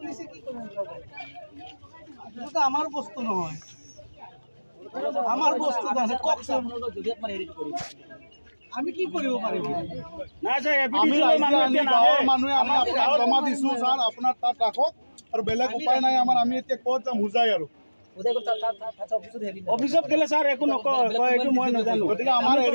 কি কৰব এটা আমাৰ বস্তু নহয় আমাৰ বস্তু আছে ককসম যদি আপনি হেৰিট কৰি আমি কি কৰিব পাৰিম না স্যাৰ আমি গাঁৱৰ মানুহে আমি আপোনাক জমা দিছো স্যাৰ আপোনাৰ তাত ৰাখক আৰু বেলেগ উপায় নাই আমাৰ আমি এতিয়া ক'ত যাম বুজাই আৰু অফিসত গেলে স্যাৰ একো নকয় এইটো মই নাজানো গতিকে আমাৰ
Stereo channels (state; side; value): inverted; both; correlation -1.00